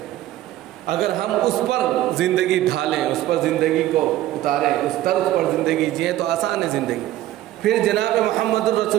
اگر ہم اس پر زندگی ڈھالیں، اس پر زندگی کو اتاریں، اس طرز پر زندگی جئیں تو آسان ہے زندگی۔ پھر جناب محمد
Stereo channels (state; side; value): quieter; left; 14.3 dB